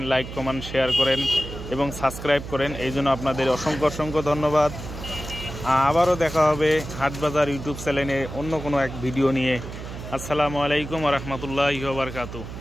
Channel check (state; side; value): noise; right; hum, 10 dB below the sound